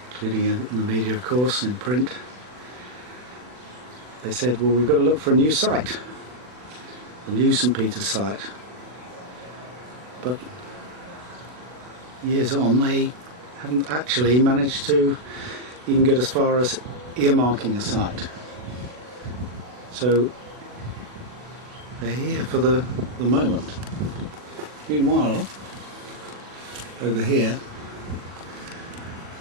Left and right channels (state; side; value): late; left; 40 ms